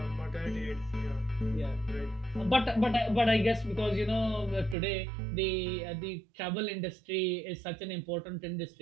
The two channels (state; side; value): drops out; left; at 4.8 s